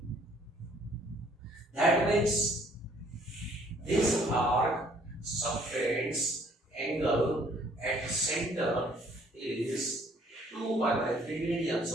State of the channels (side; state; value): both; normal; correlation 0.60